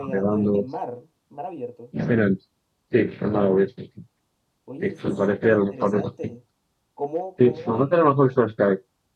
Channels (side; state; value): both; identical; correlation 1.00